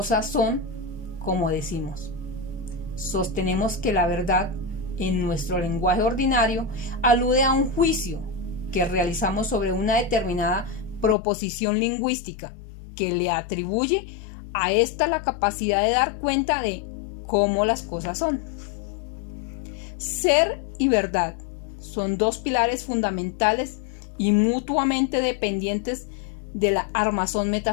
son como decimos? Sostenemos que la verdad, en nuestro lenguaje ordinario, alude a un juicio que realizamos sobre una determinada proposición lingüística que le atribuye a esta la capacidad de dar cuenta de cómo las cosas son. Ser y verdad son dos pilares fundamentales y mutuamente dependientes de la armazón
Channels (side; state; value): right; drops out; at 11.2 s